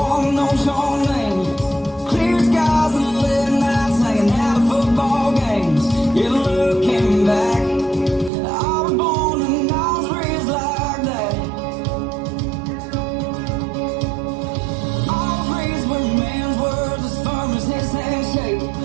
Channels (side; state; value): left; drops out; at 8.3 s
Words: knows your name. Clear skies and late nights hanging out at football games. You're looking back. I was born and I was raised like that. I was raised where man's words as firm as his handshake.